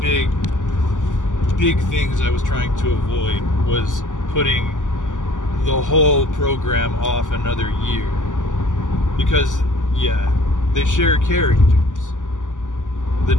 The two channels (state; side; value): late; right; 0.87 ms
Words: things I was trying to avoid, was putting the whole program off another year. Because yeah, they share characters. The